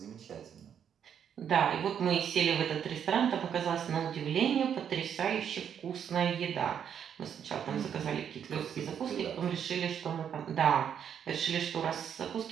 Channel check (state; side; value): quieter; left; 8.4 dB